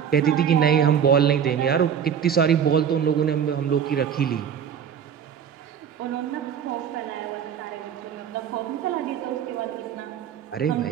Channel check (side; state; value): left; quieter; 8.2 dB